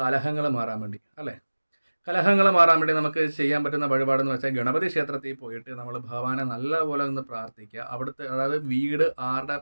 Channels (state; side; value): inverted; both; correlation -1.00